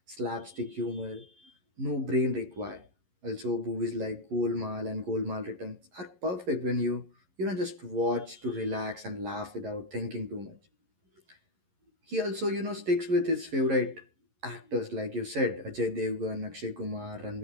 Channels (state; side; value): late; left; 11 ms